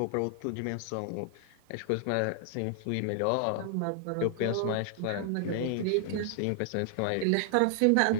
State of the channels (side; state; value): both; different; correlation 0.00